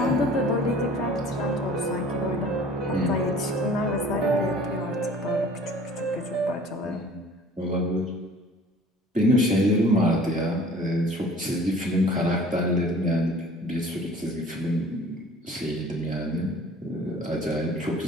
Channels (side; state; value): both; normal; correlation 0.48